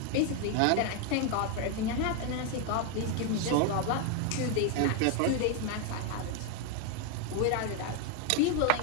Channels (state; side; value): different; both; correlation 0.01